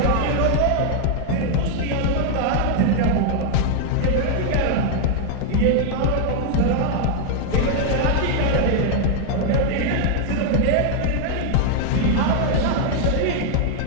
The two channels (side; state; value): both; different; correlation 0.00